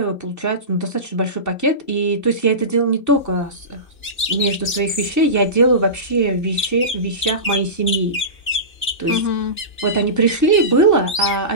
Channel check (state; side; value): late; right; 2.9 ms